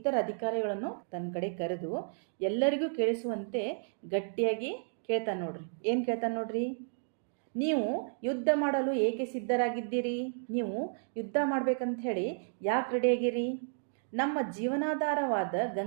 ಅಧಿಕಾರಿಗಳನ್ನು ತನ್ನ ಕಡೆ ಕರೆದು ಎಲ್ಲರಿಗೂ ಕೇಳಿಸುವಂತೆ ಗಟ್ಟಿಯಾಗಿ ಕೇಳ್ತಾನೆ. ನೋಡ್ರಿ, ಏನು ಕೇಳ್ತಾನೆ ನೋಡ್ರಿ, ನೀವು ಯುದ್ಧ ಮಾಡಲು ಏಕೆ ಸಿದ್ಧರಾಗಿದ್ದೀರಿ? ನೀವು ಯುದ್ಧ ಮಾಡ್ಬೇಕಂತ ಹೇಳಿ ಯಾಕೆ ರೆಡಿಯಾಗಿರಿ? ನಮ್ಮ ಜೀವನಾಧಾರವಾದ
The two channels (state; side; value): silent; left; digital silence